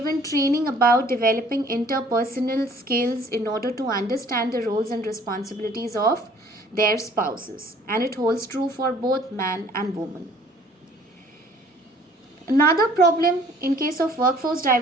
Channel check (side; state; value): both; normal; correlation 0.55